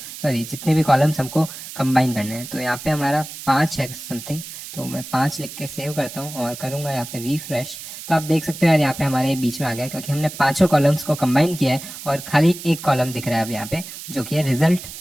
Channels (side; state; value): right; noise; hiss, 12 dB below the sound